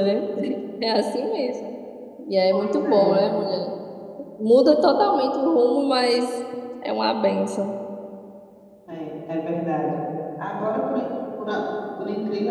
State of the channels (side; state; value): both; identical; correlation 1.00